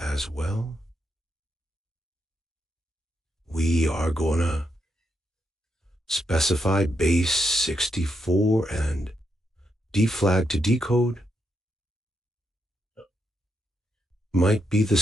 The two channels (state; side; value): normal; both; correlation 0.81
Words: well. We are gonna specify base 64 and deflag to decode. Might be the